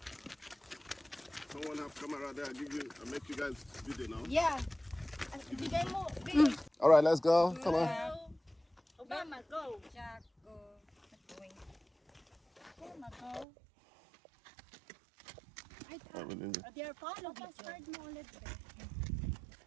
Someone have camera there. I'll make you guys video now. Yeah. Bigay mo. All right, let's go. Come on. Obama, go. Jack, go. Obama, go. All right, release it. They are follow video. Start mo ulit.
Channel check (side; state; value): left; drops out; at 13.5 s